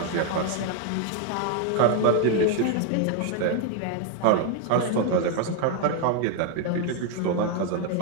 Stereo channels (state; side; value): different; both; correlation 0.01